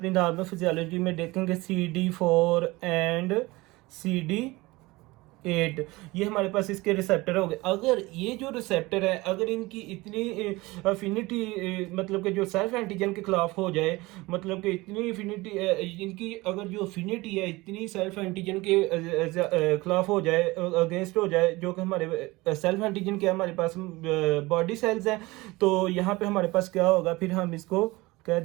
नॉर्मल फिजियोलॉजी में देखेंगे CD4 एंड CD8। ये हमारे पास इसके रिसेप्टर हो गए। अगर ये जो रिसेप्टर है, अगर इनकी इतनी अफिनिटी, मतलब कि जो सेल्फ एंटीजन के खिलाफ हो जाए, मतलब कि इतनी अफिनिटी इनकी, अगर जो अफिनिटी है इतनी सेल्फ एंटीजन के खिलाफ हो जाए, अगेंस्ट हो जाए, जो कि हमारे सेल्फ एंटीजन के हमारे पास बॉडी सेल्स हैं, तो यहाँ पे हमारे पास क्या होगा, फिर हम इसको कह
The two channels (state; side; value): quieter; left; 21.5 dB